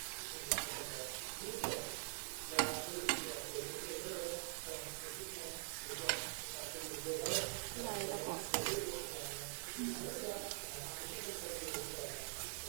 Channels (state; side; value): silent; left; digital silence